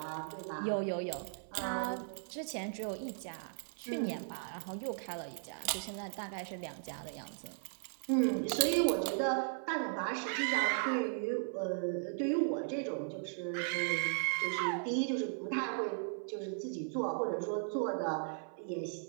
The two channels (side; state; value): left; silent; 53 dB below the other